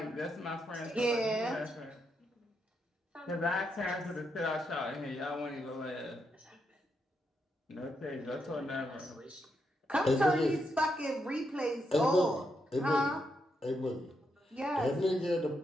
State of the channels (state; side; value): normal; both; correlation 0.81